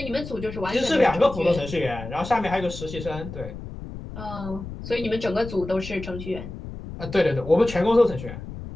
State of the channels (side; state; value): left; noise; rumble, 11 dB below the sound